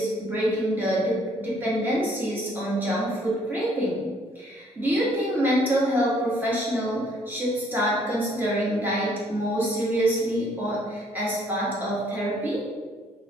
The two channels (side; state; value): both; normal; correlation 0.63